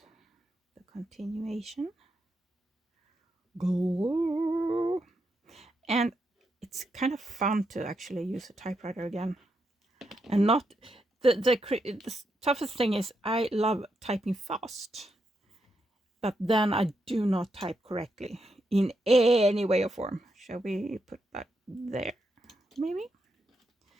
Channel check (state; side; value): normal; both; correlation 0.82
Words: the continuation. Go. And it's kind of fun to actually use a typewriter again. And not the toughest thing is I love typing fast, but then I do not type correctly in any way or form. Shall we put that there? Maybe